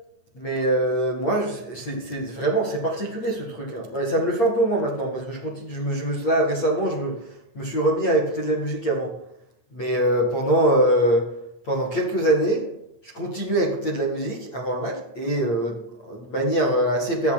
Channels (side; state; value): right; late; 8.7 ms